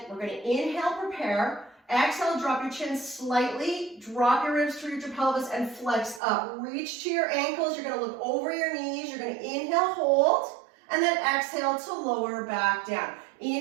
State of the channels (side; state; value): left; drops out; at 6.2 s